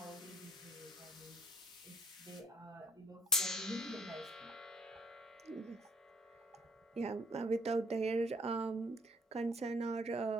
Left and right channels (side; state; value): both; normal; correlation 0.61